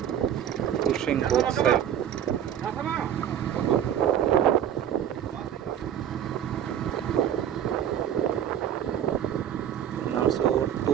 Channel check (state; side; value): quieter; left; 10.1 dB